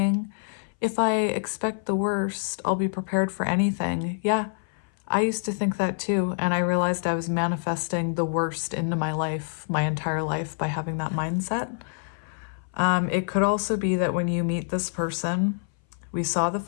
if I expect the worst, I'll be prepared for anything. Yeah, I used to think that too. And I realized I was manifesting the worst into my life, my entire life, by having that mindset. It could also be that when you meet this person, we saw the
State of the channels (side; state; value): right; silent; 59 dB below the other